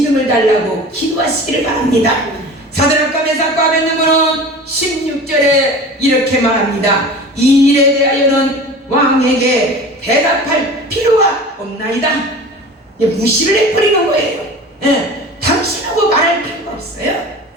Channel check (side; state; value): both; normal; correlation 0.37